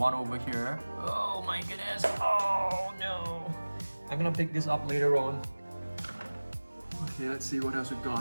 over here. Oh my goodness. Oh no. I'm gonna pick this up later on. Okay, let's see what else we've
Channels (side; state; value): both; inverted; correlation -1.00